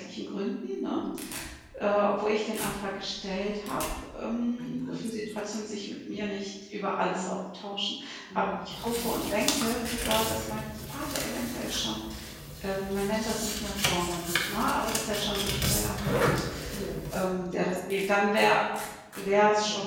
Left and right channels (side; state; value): both; identical; correlation 1.00